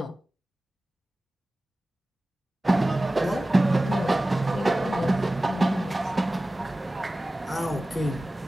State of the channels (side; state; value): both; normal; correlation 0.97